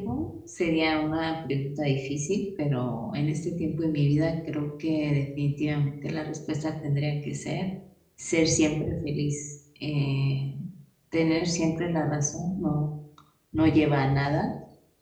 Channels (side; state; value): both; identical; correlation 1.00